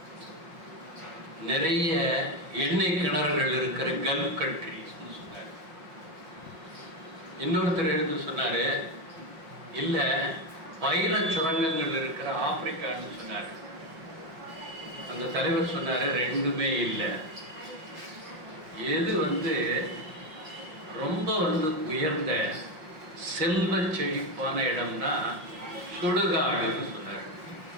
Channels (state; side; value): late; left; 5.7 ms